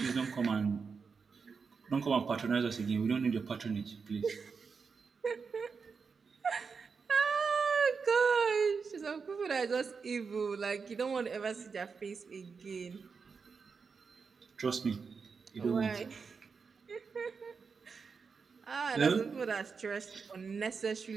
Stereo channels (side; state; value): left; quieter; 5.3 dB